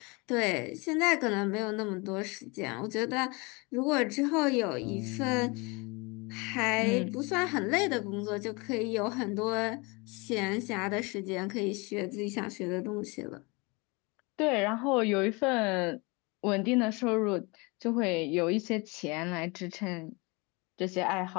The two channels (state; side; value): quieter; right; 27.6 dB